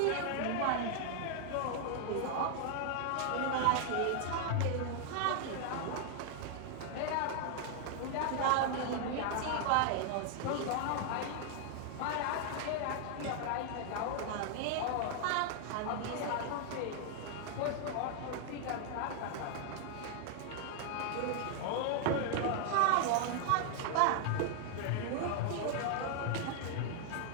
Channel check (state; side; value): different; both; correlation 0.00